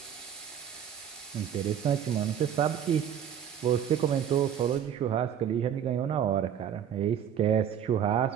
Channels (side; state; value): left; quieter; 9.1 dB